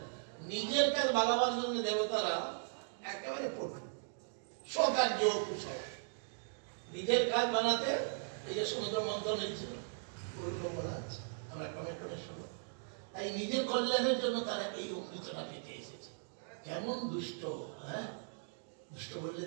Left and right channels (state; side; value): silent; left; digital silence